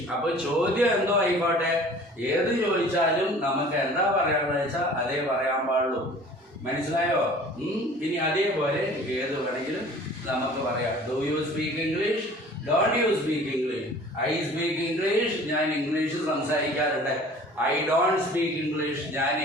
അപ്പൊ ചോദ്യം എന്തോ ആയിക്കോട്ടെ, ഏത് ചോദിച്ചാലും നമുക്ക് എന്താ പറയാന്ന് വെച്ചാൽ അതേ പറയാൻ പാടുള്ളൂ. മനസ്സിലായോ? ഇനി അതേപോലെ ഏത് വേണമെങ്കിലും നമുക്ക് പറയാം. Do you speak English, don't you speak English. I speak English, ഞാൻ ഇംഗ്ലീഷ് സംസാരിക്കാറുണ്ട്. ഐ ഡോണ്ട് സ്പീക്ക് ഇംഗ്ലീഷ്, ഞാൻ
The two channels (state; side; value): normal; both; correlation 0.47